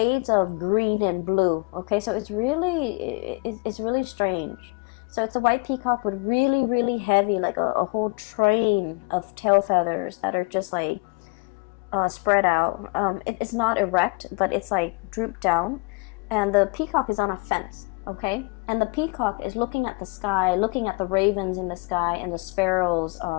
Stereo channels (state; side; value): quieter; right; 31.0 dB